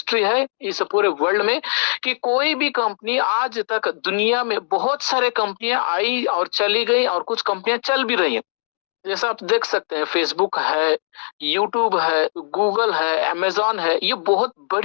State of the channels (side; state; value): right; silent; digital silence